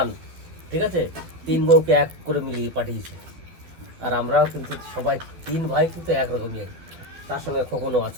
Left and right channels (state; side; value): late; left; 12 ms